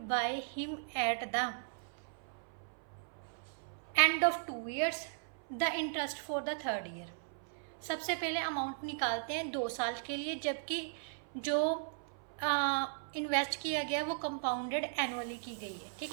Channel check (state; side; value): silent; left; 53 dB below the other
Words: by him at the end of 2 years, the interest for the 3rd year. सबसे पहले amount निकालते हैं 2 साल के लिए, जबकि जो invest किया गया वो कंपाउंडेड एनुअली की गई है